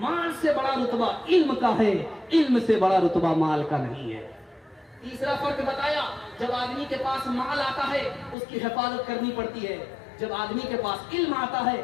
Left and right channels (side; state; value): right; drops out; at 8.3 s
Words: مال سے بڑا رتبہ علم کا ہے، علم سے بڑا رتبہ مال کا نہیں ہے۔ تیسرا فرق بتایا، جب آدمی کے پاس مال آتا ہے اس کی حفاظت کرنی پڑتی ہے، جب آدمی کے پاس علم آتا ہے